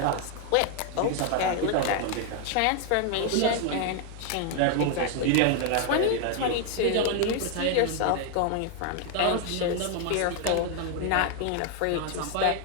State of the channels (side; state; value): both; different; correlation 0.01